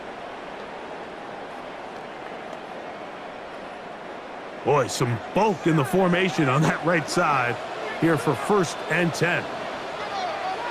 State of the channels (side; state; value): both; identical; correlation 1.00